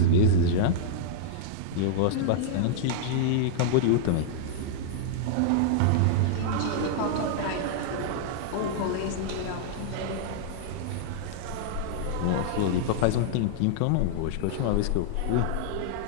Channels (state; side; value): different; both; correlation -0.01